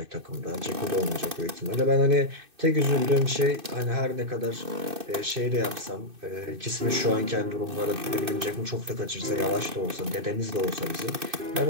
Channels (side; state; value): left; late; 2.6 ms